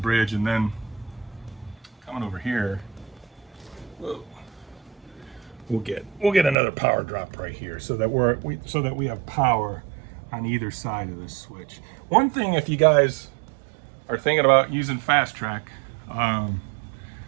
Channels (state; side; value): drops out; left; at 6.6 s